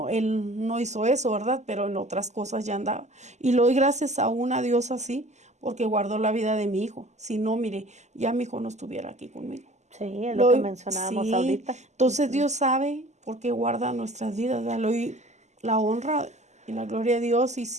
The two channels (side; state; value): left; late; 0.33 ms